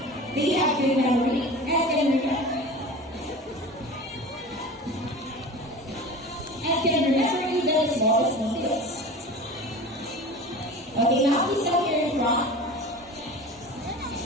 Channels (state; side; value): normal; both; correlation 0.35